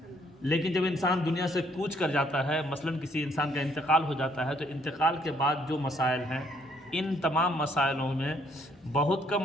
لیکن جب انسان دنیا سے کوچ کر جاتا ہے، مثلاً کسی انسان کا انتقال ہو جاتا ہے، تو انتقال کے بعد جو مسائل ہیں ان تمام مسائلوں میں بہت کم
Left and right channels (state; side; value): normal; both; correlation 0.67